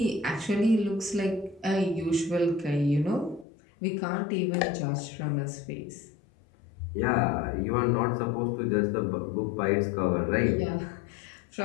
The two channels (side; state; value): right; drops out; at 3.5 s